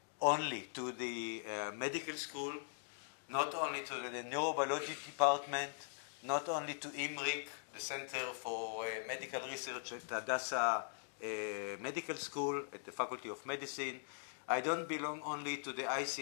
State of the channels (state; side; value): silent; right; digital silence